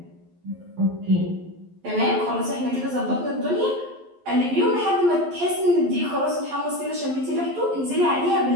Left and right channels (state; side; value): late; left; 11 ms